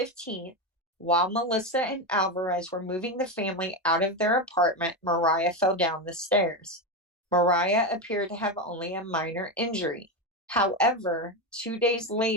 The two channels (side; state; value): both; normal; correlation 0.13